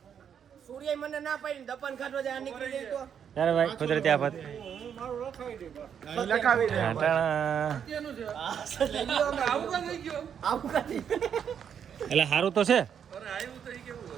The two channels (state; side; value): quieter; left; 8.1 dB